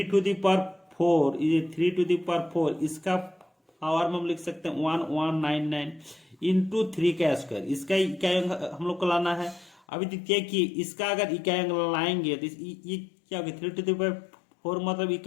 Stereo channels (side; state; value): right; drops out; at 9.8 s